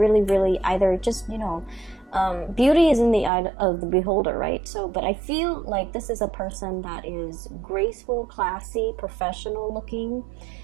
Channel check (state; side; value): drops out; left; at 3.3 s